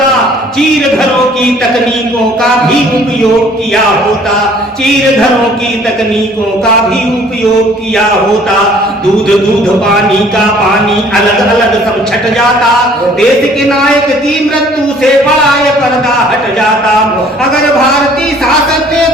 चीर घरों की तकनीकों का भी उपयोग किया होता, चीर घरों की तकनीकों का भी उपयोग किया होता। दूध दूध पानी का पानी अलग अलग सब छट जाता। देश के नायक की मृत्यु से बड़ा ये पर्दा हट जाता। अगर भारतीय शासन ने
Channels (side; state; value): both; normal; correlation 0.56